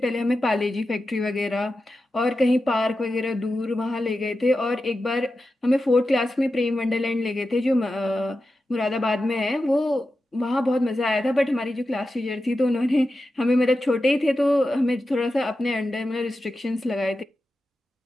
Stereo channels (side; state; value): both; normal; correlation 0.91